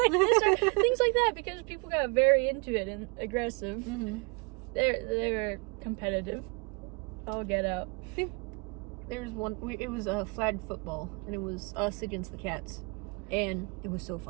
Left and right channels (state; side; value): quieter; left; 31.0 dB